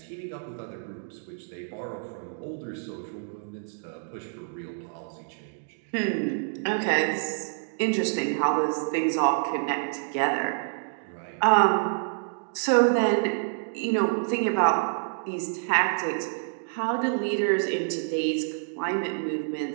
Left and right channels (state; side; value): silent; left; digital silence